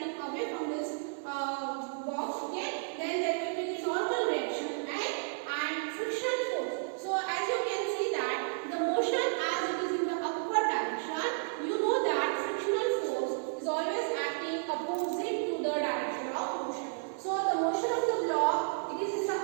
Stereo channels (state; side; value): silent; left; digital silence